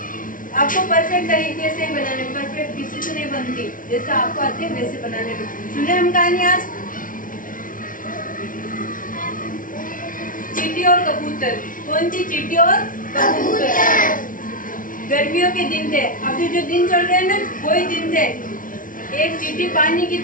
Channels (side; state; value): right; late; 0.39 ms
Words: आपको परफेक्ट तरीके से बनाने, परफेक्ट किसी से नहीं बनती, जैसा आपको आते हैं वैसे बनाने में। सुने हम कहानी आज चींटी और कबूतर। कौन सी? चींटी और कबूतर। गर्मियों के दिन थे, अभी जो दिन चल रहे हैं ना वही दिन थे। एक चींटी पानी की